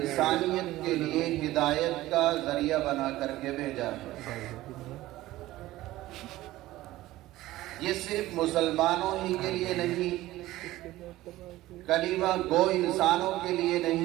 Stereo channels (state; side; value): quieter; left; 16.5 dB